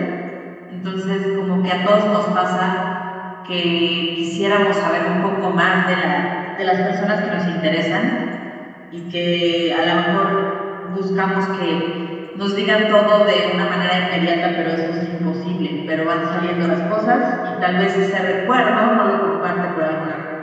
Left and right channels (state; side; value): identical; both; correlation 1.00